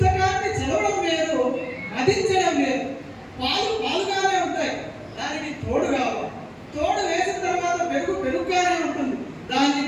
చదవడం వేరు, మదించడం వేరు. పాలుగానే ఉంటాయి, దానికి తోడు కావాలి. తోడు వేసిన తర్వాత పెరుగుగానే ఉంటుంది, దాన్ని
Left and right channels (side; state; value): both; identical; correlation 1.00